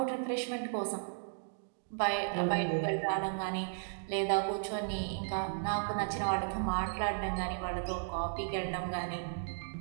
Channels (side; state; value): left; silent; digital silence